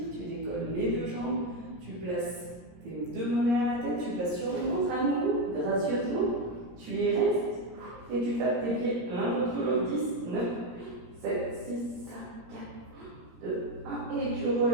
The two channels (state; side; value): late; left; 17 ms